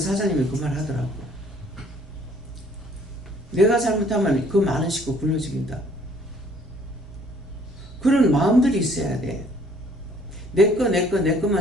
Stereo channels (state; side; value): normal; both; correlation 0.59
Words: 그 말 하더라고. 내가 잘못하면 그 많은 식구 굶어 죽인다. 그런 마음들이 있어야 돼. 내